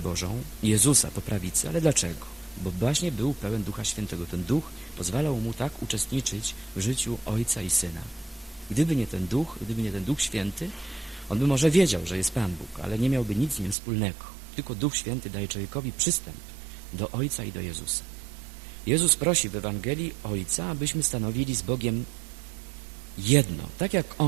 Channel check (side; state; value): left; drops out; at 13.8 s